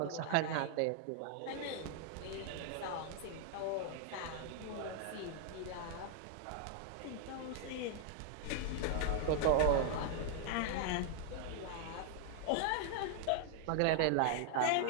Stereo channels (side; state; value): both; different; correlation 0.00